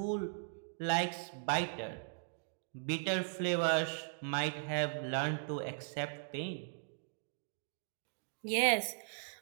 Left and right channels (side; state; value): left; silent; digital silence